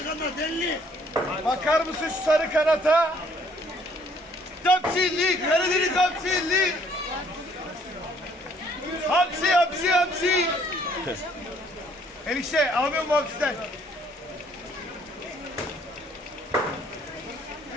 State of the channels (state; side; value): normal; both; correlation 0.62